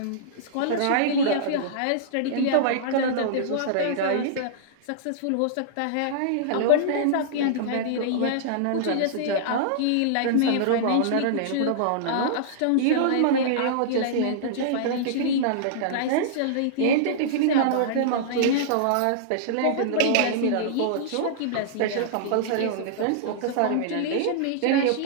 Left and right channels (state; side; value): different; both; correlation -0.02